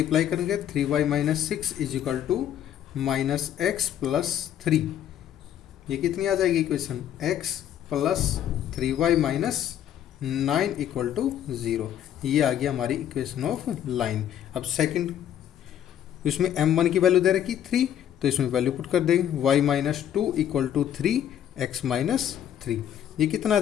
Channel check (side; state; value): right; quieter; 10.4 dB